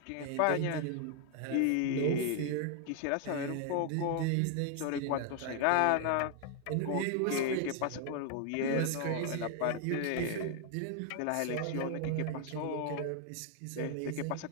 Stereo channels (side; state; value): both; different; correlation 0.00